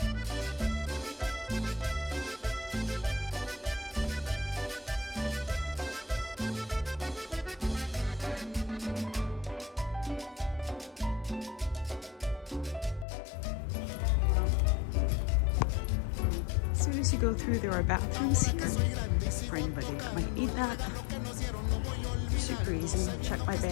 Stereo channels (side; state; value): right; drops out; at 13.1 s